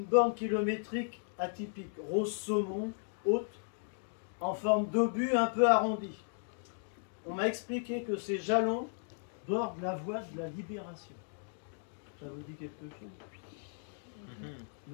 borne kilométrique atypique, rose saumon, haute, en forme d'obus un peu arrondi. On m'a expliqué que ces jalons bordent la voie de la libération. Ça vous dit quelque chose?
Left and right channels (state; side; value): silent; right; digital silence